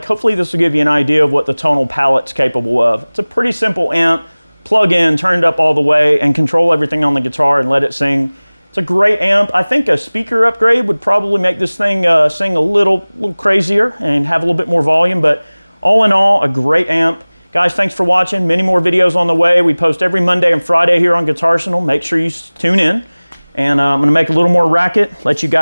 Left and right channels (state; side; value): inverted; both; correlation -1.00